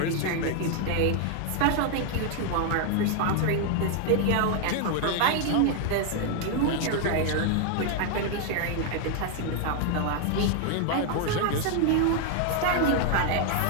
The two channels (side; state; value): both; different; correlation 0.00